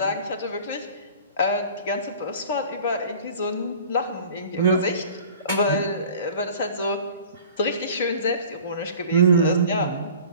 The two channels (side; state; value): both; inverted; correlation -0.45